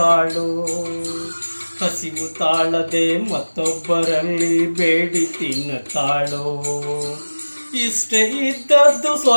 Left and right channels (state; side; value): inverted; both; correlation -1.00